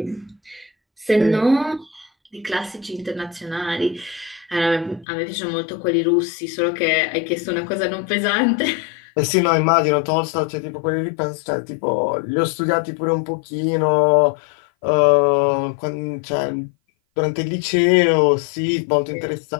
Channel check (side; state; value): right; drops out; at 5.1 s